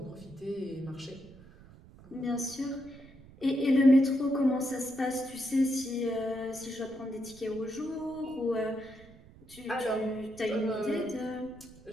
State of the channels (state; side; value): noise; right; rumble, 22 dB below the sound